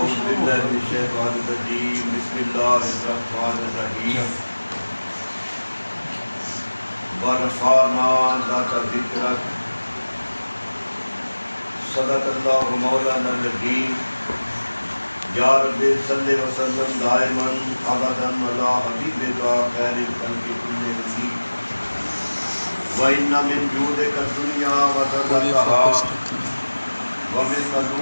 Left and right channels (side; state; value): both; inverted; correlation -1.00